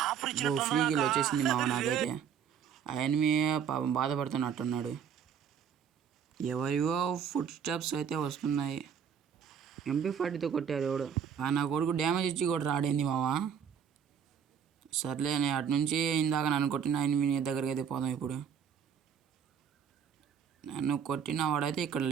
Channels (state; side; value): quieter; left; 7.7 dB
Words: ఫ్రీ కిల్ వచ్చేసింది మామ నాకైతే. ఆ ఎనిమి పాపం బాధపడుతున్నట్టున్నాడు. ఎవరివో ఫుట్ స్టెప్స్ అయితే వస్తున్నాయి. MP40తో కొట్టారు ఎవడు. నా కొడుకు డ్యామేజ్ ఇచ్చి కూడా రాడేంది మావా. సర్లే, నేను అటు నుంచి ఇందాక నన్ను కొట్టిన ఎనిమి దగ్గరికి అయితే పోదాం. ఇప్పుడు నన్ను కొట్టిన వాడైతే ఇక్కడ